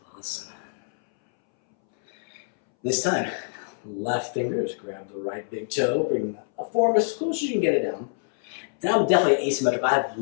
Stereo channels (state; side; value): silent; right; 61 dB below the other